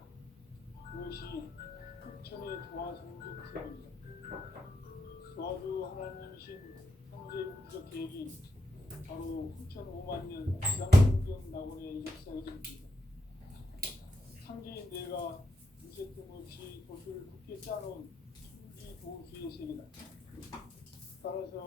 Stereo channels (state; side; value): normal; both; correlation 0.83